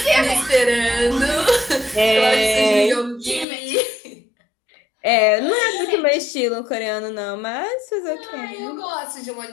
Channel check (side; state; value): right; drops out; at 3.5 s